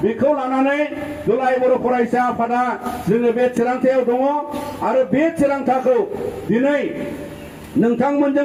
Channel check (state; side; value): identical; both; correlation 1.00